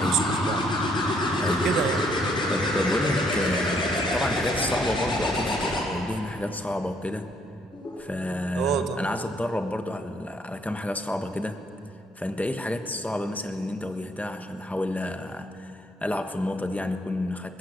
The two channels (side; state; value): both; normal; correlation 0.68